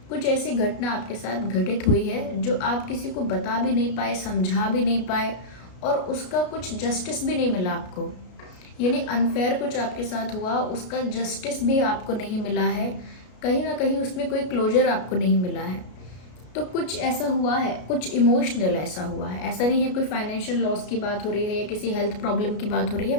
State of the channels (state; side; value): late; right; 33 ms